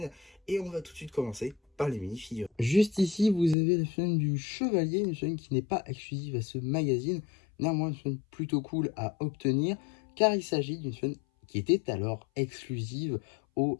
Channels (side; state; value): right; drops out; at 3.6 s